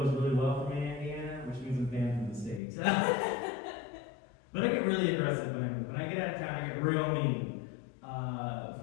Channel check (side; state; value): right; drops out; at 2.6 s